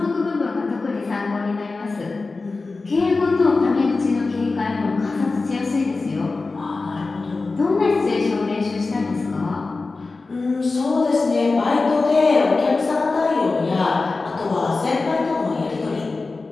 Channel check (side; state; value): right; quieter; 3.8 dB